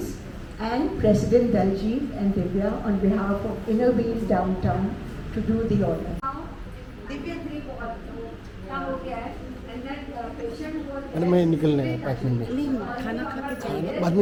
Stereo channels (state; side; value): identical; both; correlation 1.00